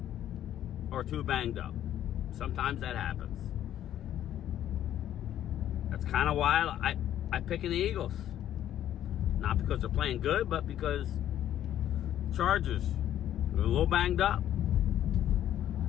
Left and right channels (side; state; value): right; quieter; 11.5 dB